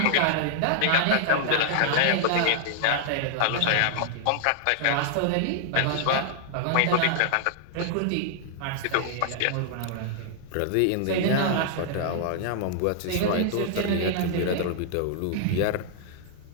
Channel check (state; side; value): different; both; correlation -0.01